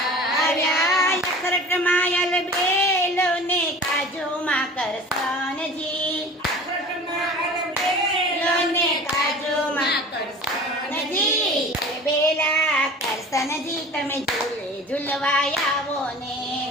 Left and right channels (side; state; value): both; normal; correlation 0.41